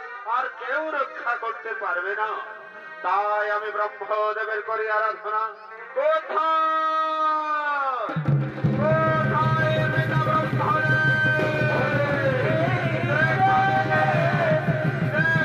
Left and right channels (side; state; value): both; identical; correlation 1.00